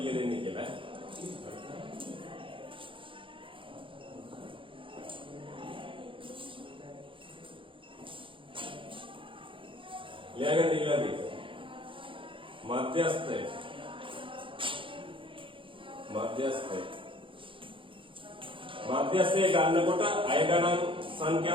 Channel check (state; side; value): late; left; 0.25 ms